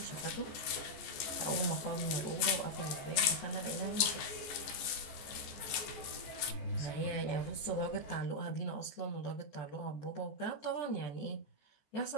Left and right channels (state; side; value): late; right; 14 ms